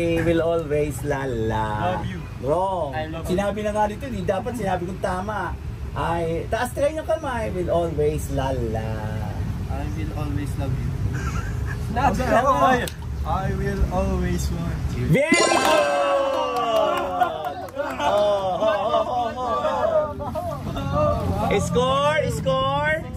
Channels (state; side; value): identical; both; correlation 1.00